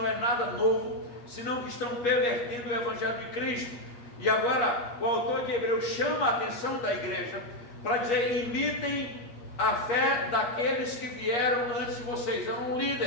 é nada novo, senão que estão pervertendo o evangelho de Cristo. E agora o autor de Hebreus chama a atenção da igreja para dizer: imitem a fé daqueles que vieram antes de vocês, eram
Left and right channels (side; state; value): right; late; 8.4 ms